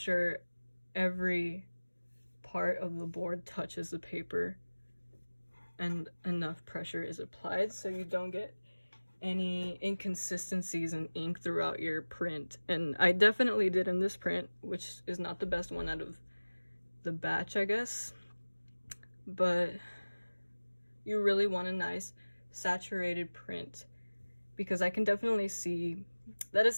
every part of the board touches the paper and enough pressure is applied so you don't get any inconsistencies in ink throughout your print. And I definitely did in this print, which is not the best one out of the batch, I guess, but you really want a nice saturated print, because I can definitely see that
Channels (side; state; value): both; inverted; correlation -1.00